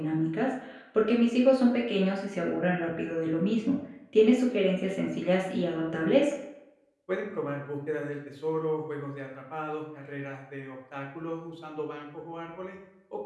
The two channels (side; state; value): both; identical; correlation 1.00